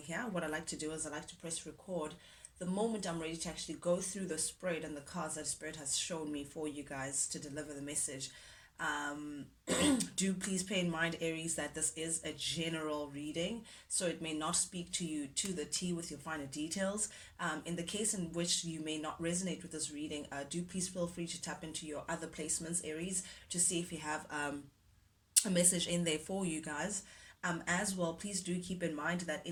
What I like to do is I like to press record the moment I'm ready to actually go through the spread and the cards that Spirit has shown me for you guys to deliver the message. Um, do please pay in mind, Aries, that this is a general reading, so it may not speak to you to the T with your finer details. In the case in which you may not resonate with this reading, do please feel free to tap into your other placements, Aries, to see if you have a message in there for you guys. As well, please do keep in mind that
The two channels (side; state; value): both; identical; correlation 1.00